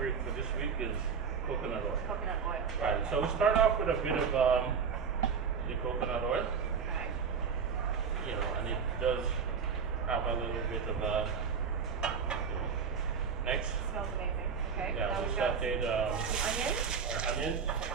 for this week is coconut oil. Coconut oil. Right. So we start off with a bit of the coconut oil. Okay. You know, and it does have a little bit of next. Smells amazing. Okay. Yeah, Now we we've got sauteed some onions. our onions.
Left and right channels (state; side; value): quieter; left; 6.1 dB